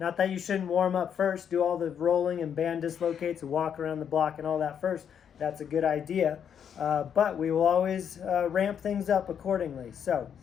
that you shouldn't warm up first, do all the rolling and band dislocates and walk around the block and all that first. That's a good idea. But we will always ramp things up accordingly. So,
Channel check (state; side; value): quieter; right; 8.2 dB